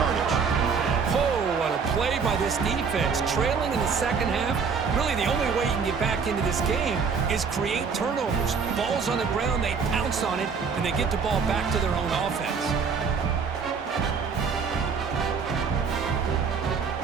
Oh, what a play by this defense. Trailing in the second half, really the only way you can get back into this game is create turnovers. Ball's on the ground, they pounce on it, and they get the ball back to their own offense.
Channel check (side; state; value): left; quieter; 5.7 dB